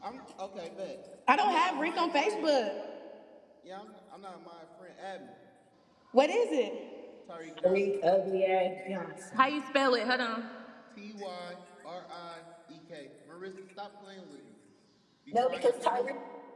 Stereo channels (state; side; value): identical; both; correlation 1.00